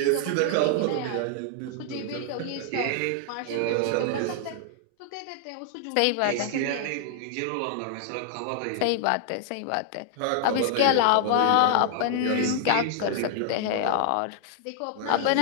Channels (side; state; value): both; different; correlation 0.00